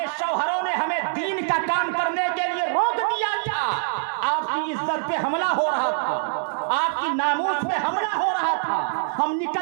شوہروں نے ہمیں دین کا کام کرنے کے لیے روک دیا تھا، آپ کی عزت پہ حملہ ہو رہا تھا، آپ کی ناموس پہ حملہ ہو رہا تھا، ہم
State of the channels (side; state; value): left; silent; digital silence